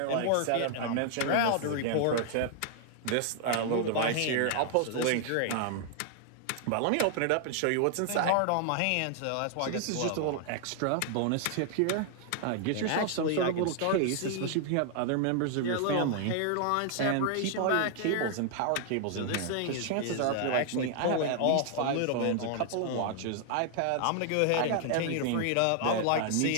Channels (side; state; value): both; different; correlation 0.00